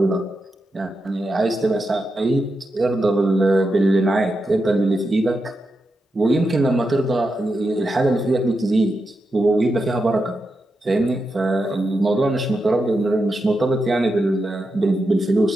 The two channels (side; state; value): both; normal; correlation 0.87